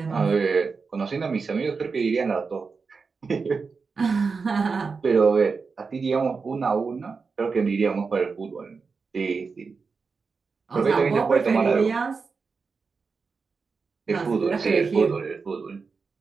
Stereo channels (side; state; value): left; quieter; 4.9 dB